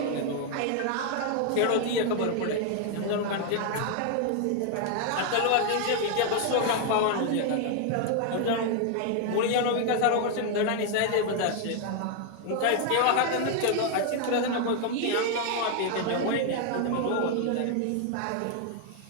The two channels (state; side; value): different; both; correlation 0.00